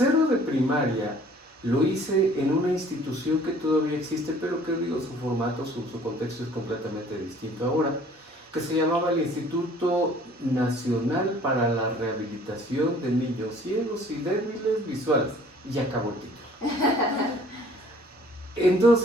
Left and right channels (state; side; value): normal; both; correlation 0.54